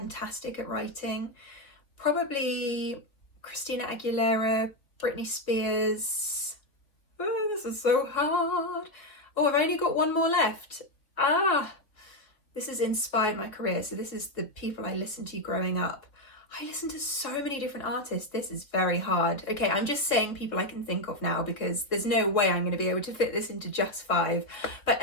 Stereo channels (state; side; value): late; right; 3.3 ms